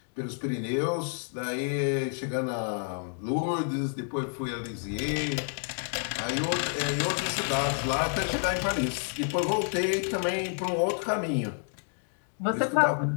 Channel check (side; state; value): right; silent; 58 dB below the other